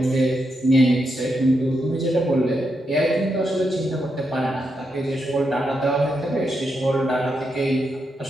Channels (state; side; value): normal; both; correlation 0.83